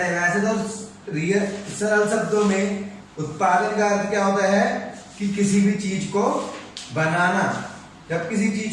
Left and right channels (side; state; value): both; identical; correlation 1.00